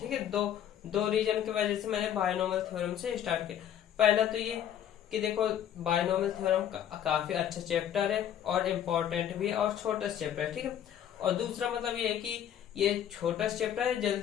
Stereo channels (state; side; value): quieter; right; 10.0 dB